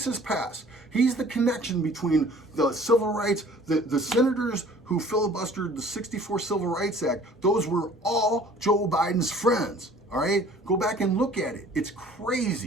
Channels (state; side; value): normal; both; correlation 0.51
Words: past. He's the connection between the civil rights, the senators who filibustered the 64 Civil Rights Act. Those were all Joe Biden's friends, all right? Go back and look at it. It's